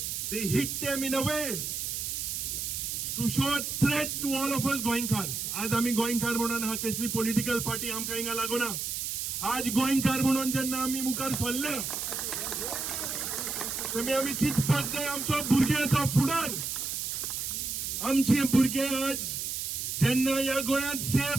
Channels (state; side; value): noise; right; hiss, 3 dB below the sound